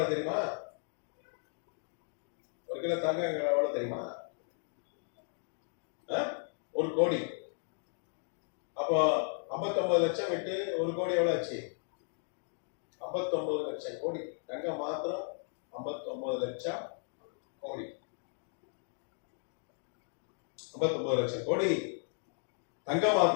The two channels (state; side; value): silent; right; 54 dB below the other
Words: தெரியுமா? 59 லட்சம் கோடி. தங்கம் மாத்திரம் 59 லட்சம் கோடி. 59 லட்சம் கோடி தங்கம்